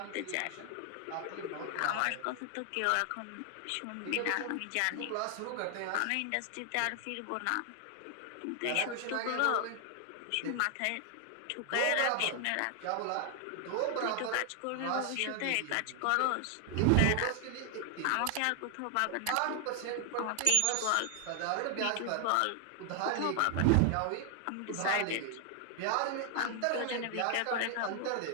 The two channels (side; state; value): both; different; correlation 0.00